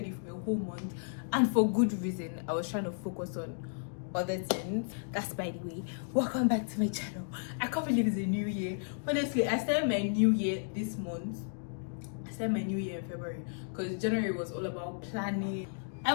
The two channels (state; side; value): silent; right; digital silence